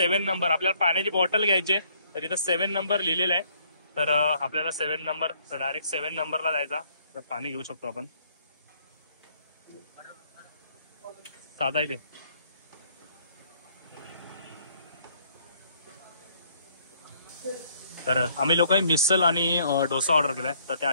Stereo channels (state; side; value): inverted; both; correlation -0.65